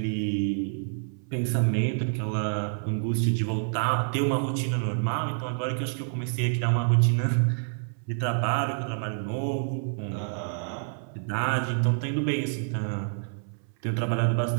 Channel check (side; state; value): left; silent; 60 dB below the other